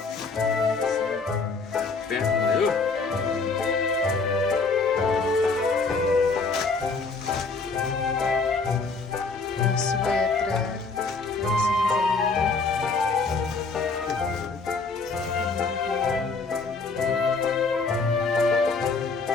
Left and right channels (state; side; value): quieter; right; 4.2 dB